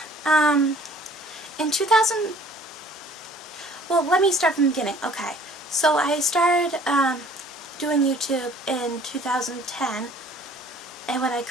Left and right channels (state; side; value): normal; both; correlation 0.53